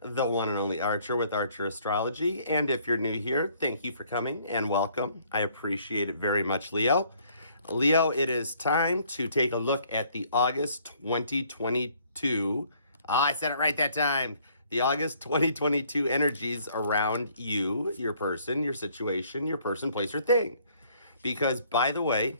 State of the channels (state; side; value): inverted; both; correlation -0.62